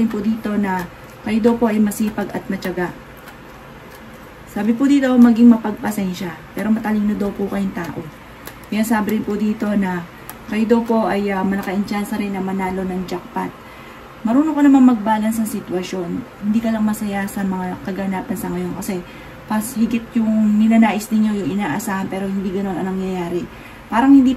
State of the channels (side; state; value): both; identical; correlation 1.00